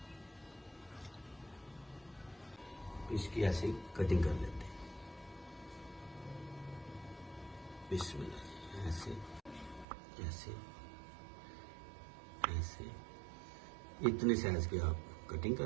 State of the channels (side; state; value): left; drops out; at 9.9 s